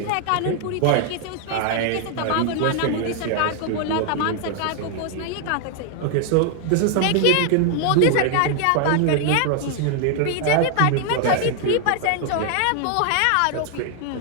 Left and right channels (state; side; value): different; both; correlation 0.00